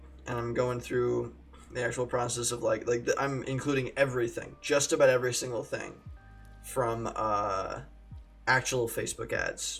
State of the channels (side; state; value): both; identical; correlation 1.00